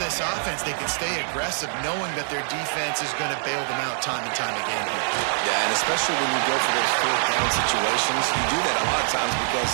this offense, they can stay aggressive knowing that their defense is going to bail them out time and time again here. Yeah, and especially when you go for those 4th down situations, you do that a lot of times because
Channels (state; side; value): silent; left; digital silence